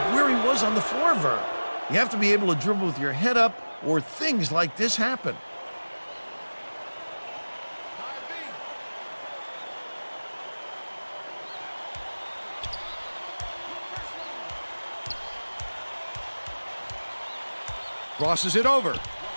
where he was on the floor, Vern. You have to be able to dribble with your head up or things like this happen. Crosses it over.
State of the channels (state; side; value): inverted; both; correlation -1.00